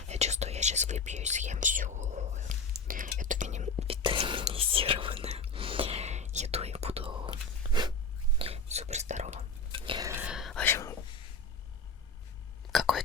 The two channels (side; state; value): right; quieter; 3.7 dB